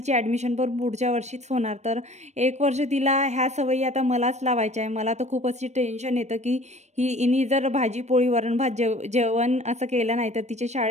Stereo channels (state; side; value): late; left; 0.33 ms